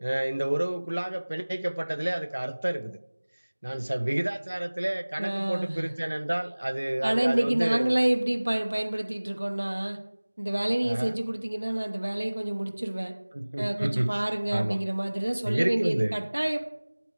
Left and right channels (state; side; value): inverted; both; correlation -1.00